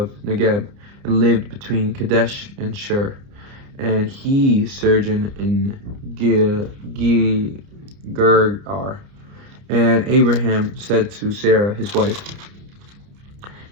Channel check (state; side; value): late; left; 29 ms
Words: Negeb and lived between Kadesh and Shur. And he sojourned in Gergar. And Abraham said to Sarah, his wife,